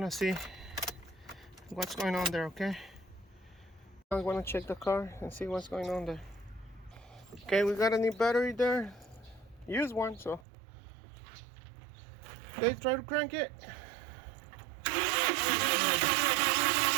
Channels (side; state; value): left; drops out; at 10.4 s